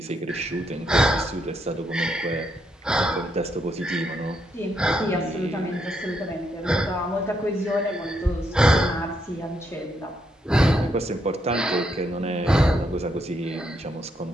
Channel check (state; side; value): normal; both; correlation 0.77